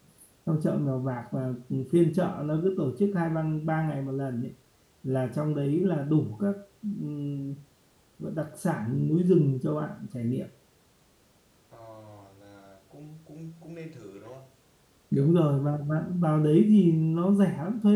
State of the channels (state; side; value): identical; both; correlation 1.00